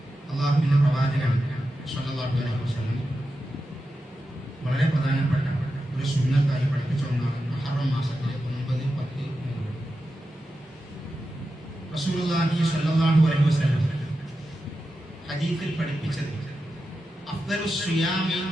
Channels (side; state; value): both; normal; correlation 0.90